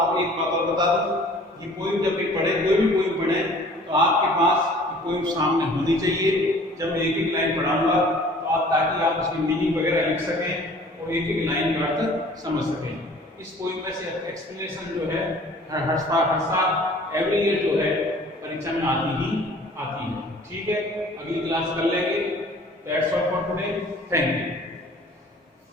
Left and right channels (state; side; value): normal; both; correlation 0.50